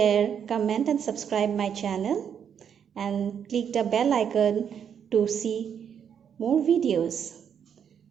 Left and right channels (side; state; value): left; quieter; 8.0 dB